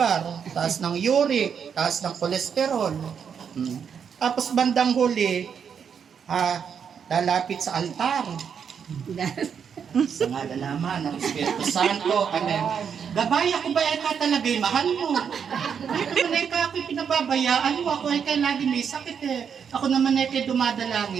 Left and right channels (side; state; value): left; quieter; 7.2 dB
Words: taas ng uric, taas ng kolesterol. Tapos bandang huli, lalapit sa altar. Sa ngala naman ng Espiritu Santo, amen. Gabay, ako ba eka talaga'y mahal mo? Ay naman eka ako'y pinababayaan mo, ako eka lagi may sakit eh. Ako naman eka dumadalangin